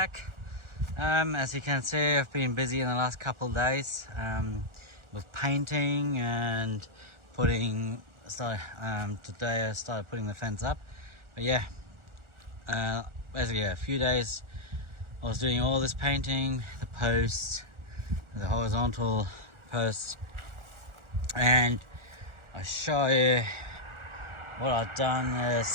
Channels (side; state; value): left; late; 1.4 ms